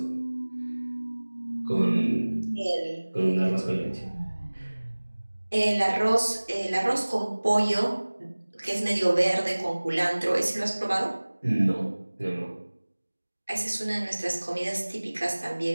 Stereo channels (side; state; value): both; inverted; correlation -1.00